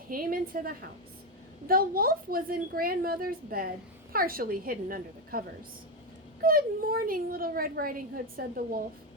into the house. The wolf was in Grandmother's bed, partially hidden under the covers. "Good morning, Little Red Riding Hood," said the wolf.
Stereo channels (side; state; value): both; normal; correlation 0.09